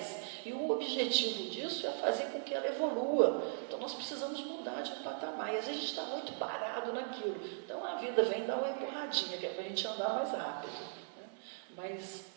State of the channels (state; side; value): silent; left; digital silence